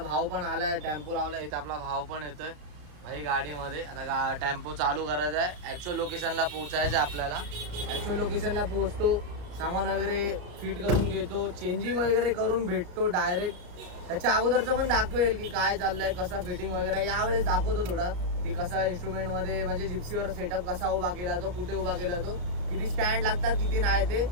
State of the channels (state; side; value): late; left; 34 ms